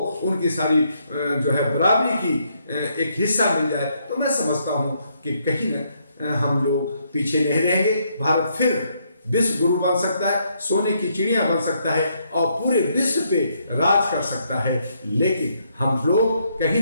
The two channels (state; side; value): inverted; both; correlation -0.74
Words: उनकी सारी जो है बराबरी की एक हिस्सा मिल जाए, तो मैं समझता हूँ कि कहीं न हम लोग पीछे नहीं रहेंगे। भारत फिर विश्व गुरु बन सकता है, सोने की चिड़िया बन सकता है, और पूरे विश्व पे राज कर सकता है। लेकिन हम लोग